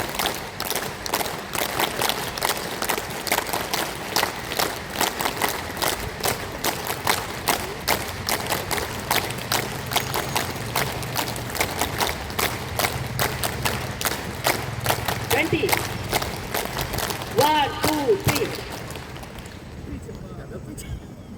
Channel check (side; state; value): both; identical; correlation 1.00